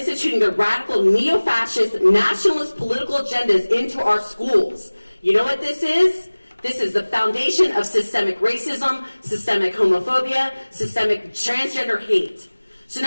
the radical neo-fascist nationalist political agendas into our schools. You know what this is? This is the foundation of systemic racism, systemic homophobia, systemic transgender hate. So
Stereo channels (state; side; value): inverted; both; correlation -1.00